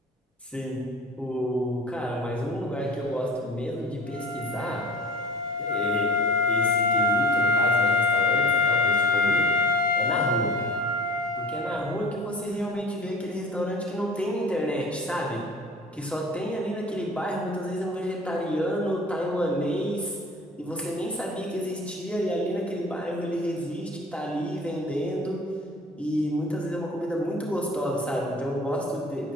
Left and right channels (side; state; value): both; normal; correlation 0.42